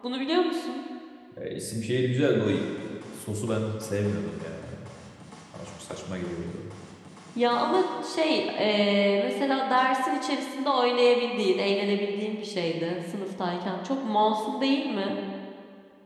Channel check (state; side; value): identical; both; correlation 1.00